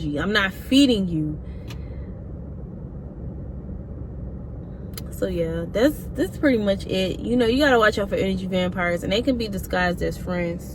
I'm not feeding you. So yeah, that's pretty much it. You know, you gotta watch out for energy vampires, and they can be disguised as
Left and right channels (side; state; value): both; identical; correlation 1.00